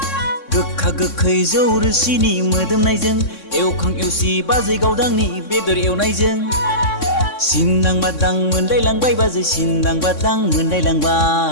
गोखा गोखै जौ रोसिनि मोदोमनायजों एवखां एवसि बाजै गावदांनि बेदर एवनायजों। सिन्दां बादां मोनलायलांबाय बाजै सिन्दां बादां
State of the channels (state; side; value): late; right; 3.6 ms